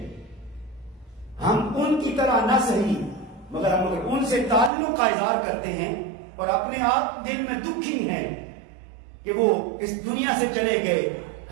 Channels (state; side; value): drops out; left; at 4.7 s